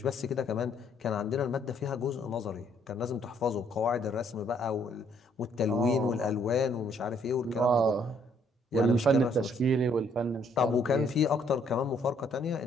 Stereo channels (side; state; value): both; normal; correlation 0.66